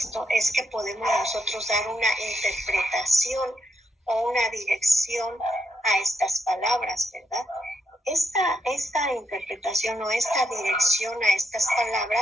es que podemos nosotros dar una interpretación o una dirección a estas palabras, ¿verdad? Esta interpretación o esta dirección a estas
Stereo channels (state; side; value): normal; both; correlation 0.79